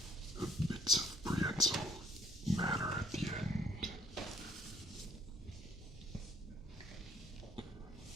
bits of prehensile matter at the end.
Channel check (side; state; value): both; normal; correlation 0.61